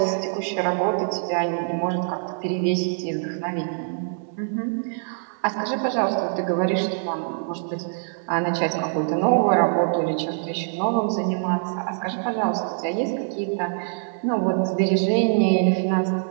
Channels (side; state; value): left; silent; 63 dB below the other